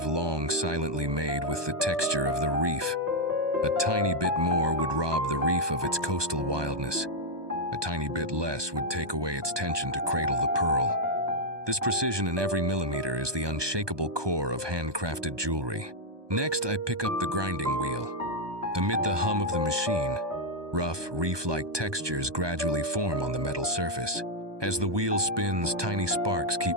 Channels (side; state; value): left; late; 1.2 ms